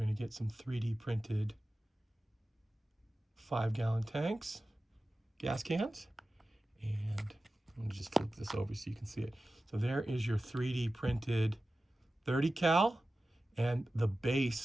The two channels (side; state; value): both; normal; correlation 0.95